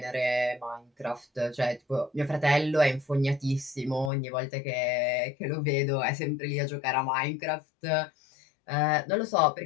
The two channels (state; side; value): drops out; right; at 4.1 s